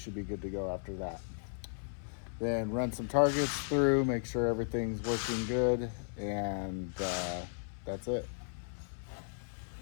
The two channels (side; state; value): right; silent; 54 dB below the other